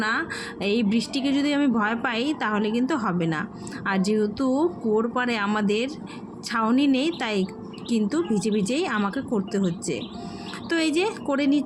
এই বৃষ্টিকে যদি আমি ভয় পাই তাহলে কিন্তু হবে না। আর যেহেতু কুয়োর পাড়ে আমাদের ছাউনি নেই, তাই কিন্তু ভিজে ভিজেই আমাকে করতে হচ্ছে। তো এই যে করে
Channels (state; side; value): identical; both; correlation 1.00